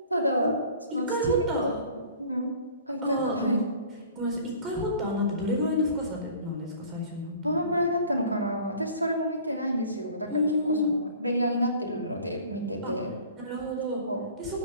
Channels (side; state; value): both; inverted; correlation -0.47